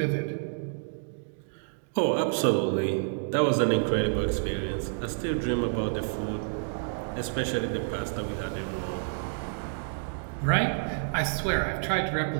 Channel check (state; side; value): silent; left; digital silence